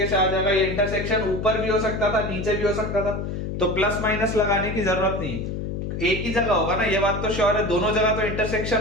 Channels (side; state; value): left; noise; hum, 4 dB below the sound